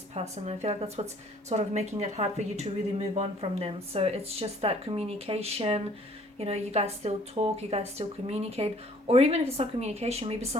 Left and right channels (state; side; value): normal; both; correlation 0.57